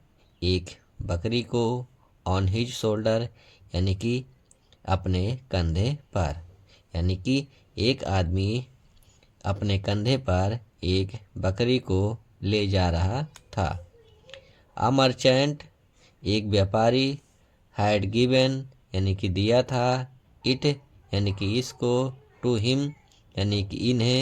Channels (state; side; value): identical; both; correlation 1.00